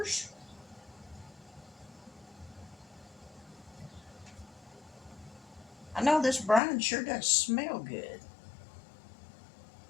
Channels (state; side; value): drops out; right; at 6.6 s